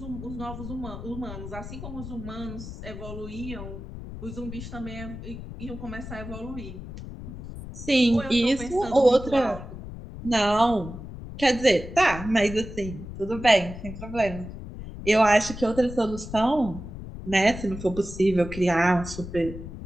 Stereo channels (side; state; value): left; noise; rumble, 11 dB below the sound